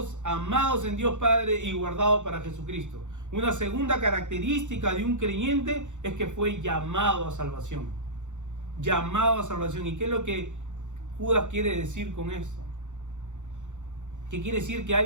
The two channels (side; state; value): left; late; 0.85 ms